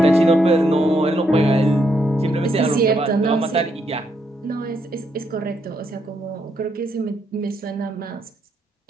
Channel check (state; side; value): normal; both; correlation 0.77